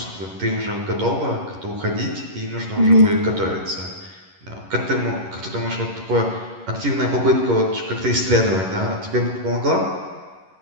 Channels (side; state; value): left; late; 11 ms